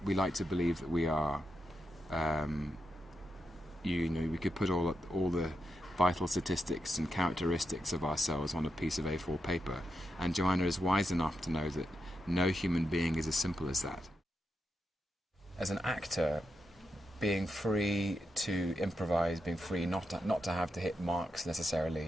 We like to believe that we are, we could put all the vital statistics and characteristics of ourselves on a piece of A4 paper, and Joanna is wise enough to know that no human being is as simple as that. As an actor, being free to improvise, being free not to have to hit marks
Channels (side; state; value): both; normal; correlation 0.85